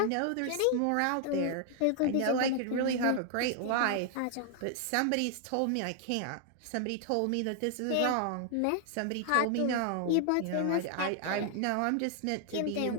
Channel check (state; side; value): different; both; correlation 0.00